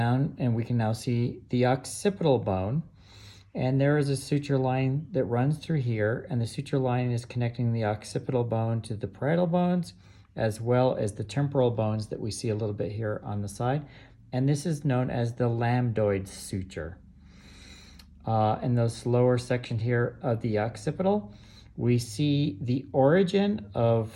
and we can now see the occipital bone. And there is a suture line that runs through here, and the suture line is connecting the occipital bone to the parietal bones, as well as the temporal bones that we see a little bit here on the side. And this is known as the lambdoid suture. In this lower section here of the occipital, we see the origin of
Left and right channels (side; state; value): both; identical; correlation 1.00